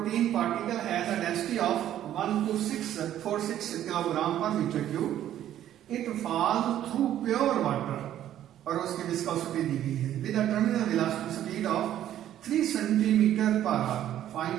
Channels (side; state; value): left; quieter; 11.7 dB